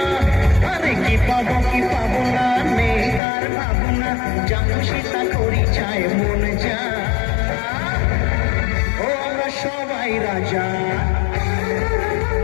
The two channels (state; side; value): drops out; right; at 3.2 s